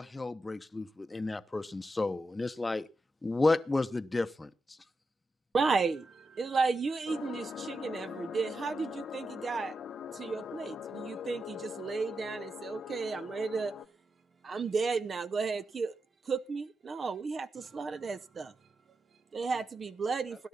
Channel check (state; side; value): normal; both; correlation 0.88